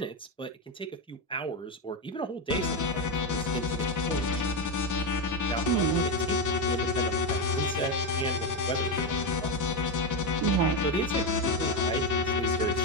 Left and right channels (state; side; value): normal; both; correlation 0.11